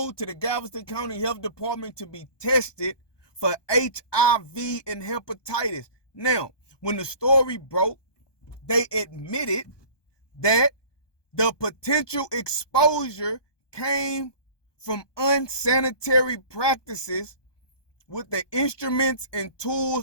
to the Galveston County Health Department to be tested for HIV and hepatitis. Now, when the story broke, they admitted that the potential exposure came from unsanitary practices with the instruments and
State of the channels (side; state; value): right; late; 1.2 ms